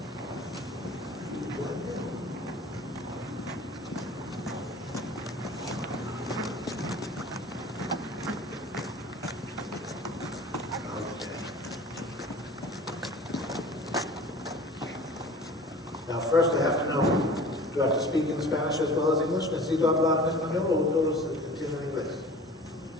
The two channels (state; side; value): normal; both; correlation 0.43